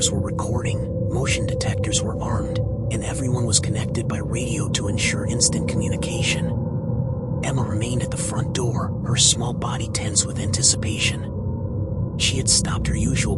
were recording, motion detectors were armed, and everyone was connected by radio to ensure instant communication. Emma remained at the front door, her small body tense with anticipation. She had stopped her usual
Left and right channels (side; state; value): both; identical; correlation 1.00